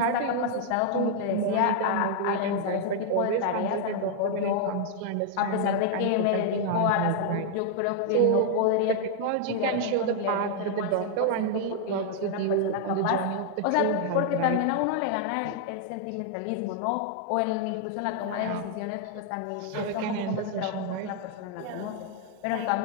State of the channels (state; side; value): different; both; correlation 0.00